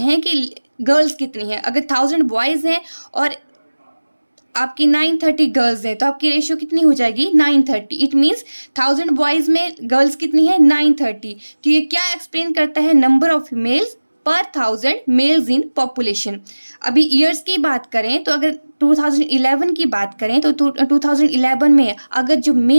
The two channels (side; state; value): both; inverted; correlation -1.00